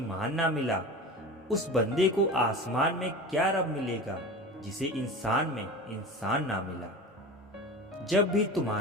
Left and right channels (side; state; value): both; normal; correlation 0.32